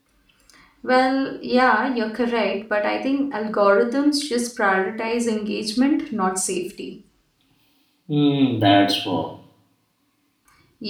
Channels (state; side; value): identical; both; correlation 1.00